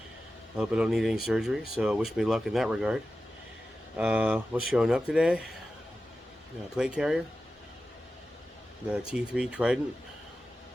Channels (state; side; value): normal; both; correlation 0.93